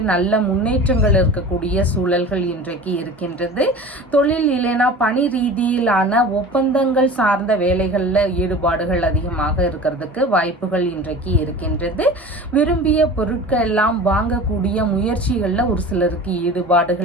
நல்ல முன்னேற்றங்கள் இருக்கக்கூடிய சூழல்கள் இன்றைக்கு இருக்கின்றது. தொழில் இல்லைன்னா பணி ரீதியிலான ஒப்பந்தங்கள் சார்ந்த வேலைகளில் ஈடுபாடுகள் அதிகமாக இருக்கிறதுக்கு வாய்ப்புகள் இன்றைக்கு இருக்கின்றது. விரும்பிய பொருட்கள் எல்லாம் வாங்கக்கூடிய முயற்சி முயற்சிகளில் ஒரு சிலருக்கு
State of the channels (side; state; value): both; normal; correlation 0.37